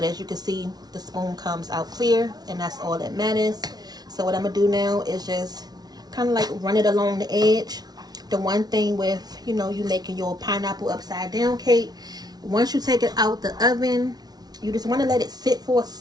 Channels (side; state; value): left; late; 0.19 ms